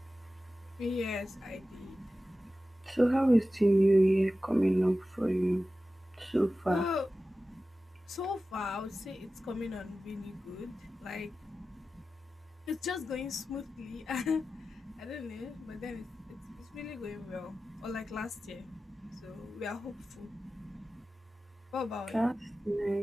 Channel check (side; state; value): both; normal; correlation 0.94